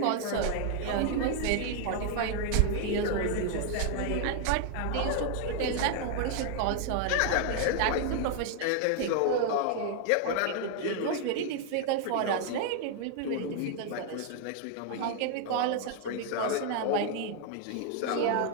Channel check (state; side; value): different; both; correlation 0.00